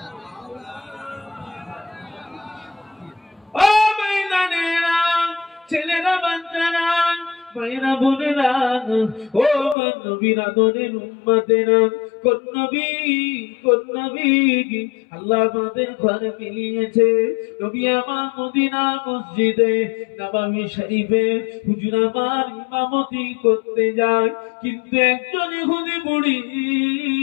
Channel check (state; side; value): drops out; right; at 9.8 s